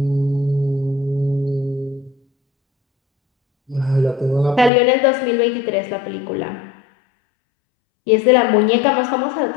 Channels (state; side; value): drops out; right; at 4.7 s